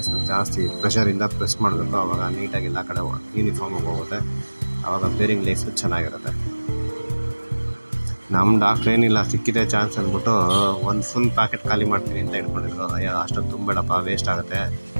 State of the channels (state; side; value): inverted; both; correlation -1.00